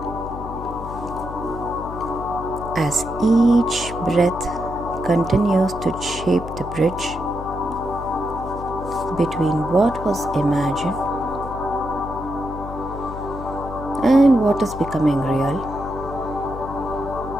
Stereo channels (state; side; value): noise; left; hum, 10 dB below the sound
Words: as each breath continues to shape the bridge between what was imagined and what is becoming real.